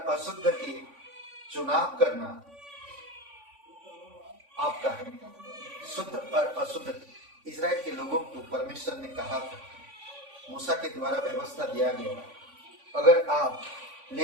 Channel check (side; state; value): left; late; 3.5 ms